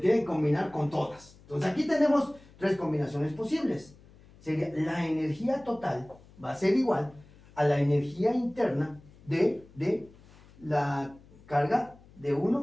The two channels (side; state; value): left; noise; hum, 24 dB below the sound